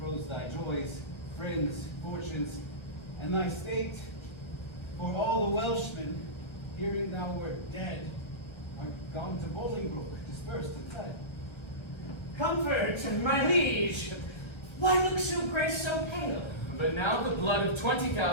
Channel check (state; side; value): late; right; 1.3 ms